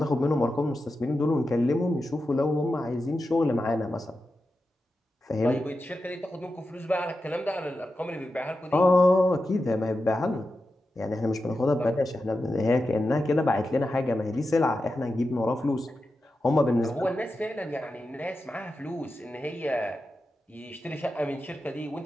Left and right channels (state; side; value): normal; both; correlation 0.91